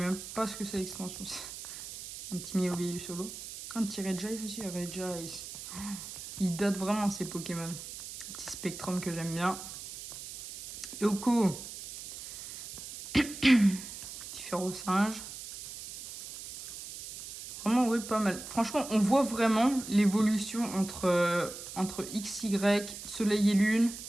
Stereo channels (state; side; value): noise; right; hiss, 11 dB below the sound